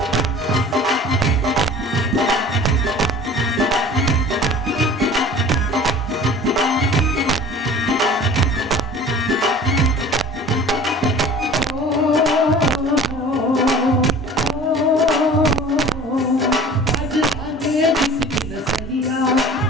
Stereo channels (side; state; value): both; normal; correlation 0.43